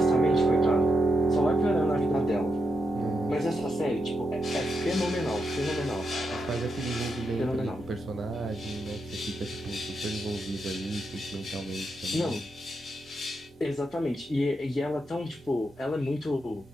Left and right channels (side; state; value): both; normal; correlation 0.83